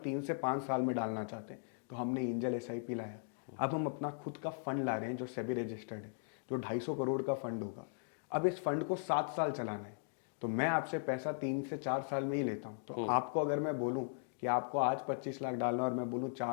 से 5 साल में डालना चाहते हैं, तो हमने एंजल SIP लाया। अब हम अपना खुद का फंड ला रहे हैं जो सेबी रजिस्टर्ड है, जो 250 करोड़ का फंड होगा। अब इस फंड को 7 साल चलाना है, तो मैं आपसे पैसा 3 से 4 साल में ही लेता हूँ। तो आपको अगर मैं बोलूँ कि आपको आज 25 लाख डालना और मैं बोलूँ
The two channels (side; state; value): right; silent; digital silence